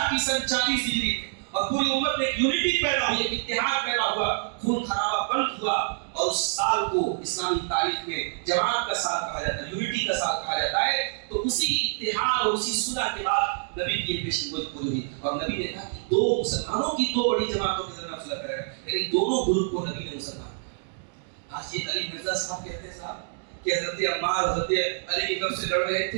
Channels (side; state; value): left; silent; 60 dB below the other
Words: کی 40 ہجری اور پوری امت میں ایک یونٹی پیدا ہوئی, ایک اتحاد پیدا ہوا, خون خرابہ بند ہوا, اور اس سال کو اسلامی تاریخ میں جماعت کا سال کہا جاتا ہے, یونٹی کا سال کہا جاتا ہے. تو اسی اتحاد اور اسی صلح کے بعد نبی کی پیشن گوئی پوری ہوئی اور نبی نے کہا کہ دو مسلمانوں کی دو بڑی جماعتوں کے درمیان صلح کرے گا. لیکن دونوں گروپ کو نبی نے مسلمان. آج یہ علی مرزا صاحب کہتے ہیں صاحب کہ حضرت عمار حضرت علی کی طرف سے لڑ رہے